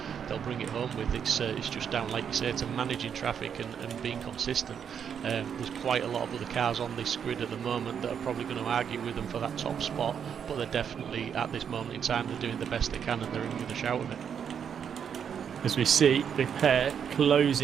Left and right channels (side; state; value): left; quieter; 7.8 dB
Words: they'll bring it home with. It's just down, like you say, to managing traffic and being consistent. There's quite a lot of other cars on this grid at the moment that are probably going to argue with them for that top spot, but they're definitely, at this moment in time, they're doing the best they can, and they're in with a shout of it. As we see the pair